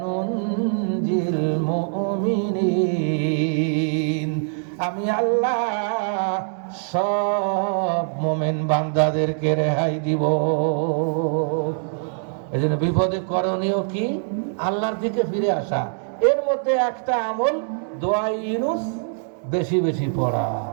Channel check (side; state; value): left; silent; digital silence